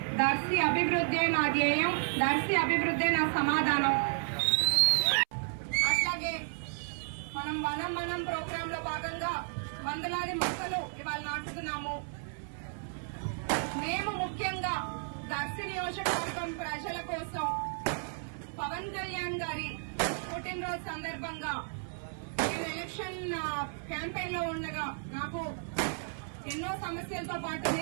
దర్శి అభివృద్ధే నా ధ్యేయం, దర్శి అభివృద్ధే నా సమాధానం. అట్లాగే మనం ప్రోగ్రామ్ లో భాగంగా వందలాది మొక్కలు ఇవాళ నాటుతున్నాము. మేము ముఖ్యంగా దర్శి నియోజకవర్గం ప్రజల కోసం పవన్ కళ్యాణ్ గారి పుట్టినరోజు సందర్భంగా నేను ఎలక్షన్ క్యాంపెయిన్ లో ఉండగా నాకు ఎన్నో సమస్యలతో పాటు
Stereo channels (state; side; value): silent; left; 56 dB below the other